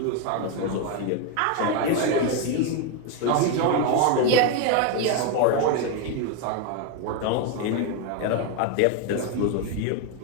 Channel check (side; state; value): both; different; correlation 0.02